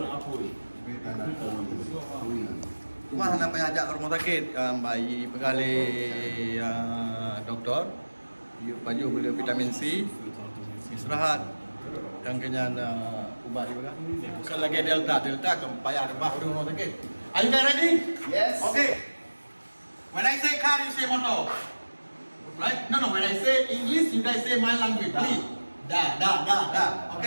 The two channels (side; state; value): both; inverted; correlation -1.00